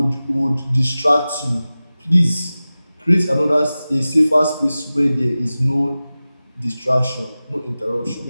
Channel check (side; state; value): both; inverted; correlation -0.96